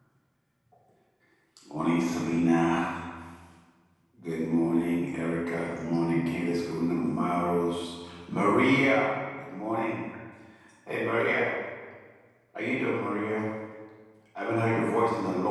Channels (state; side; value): identical; both; correlation 1.00